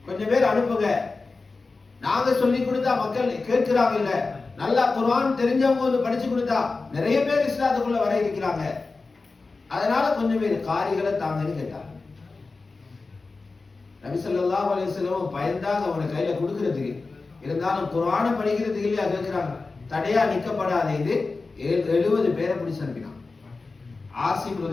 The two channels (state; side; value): quieter; right; 3.9 dB